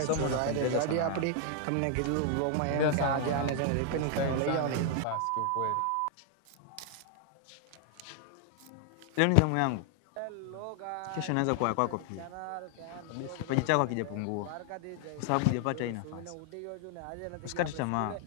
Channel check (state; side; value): different; both; correlation 0.00